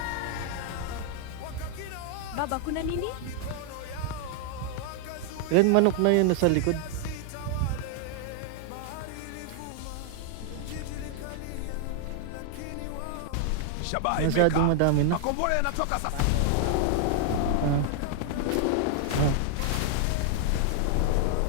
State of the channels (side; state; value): both; different; correlation 0.00